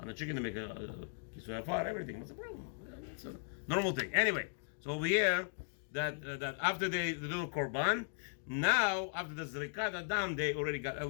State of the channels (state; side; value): silent; right; digital silence